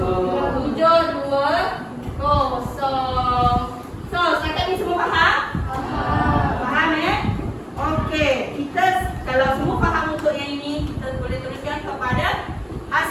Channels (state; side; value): identical; both; correlation 1.00